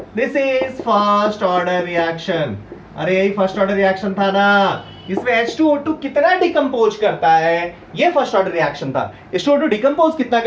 This is first order reaction. अरे यही फर्स्ट ऑर्डर रिएक्शन था ना। इसमें H2O2 कितना डिकम्पोज करता है, ये फर्स्ट ऑर्डर रिएक्शन था। H2O2 डिकम्पोज कितना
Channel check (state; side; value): identical; both; correlation 1.00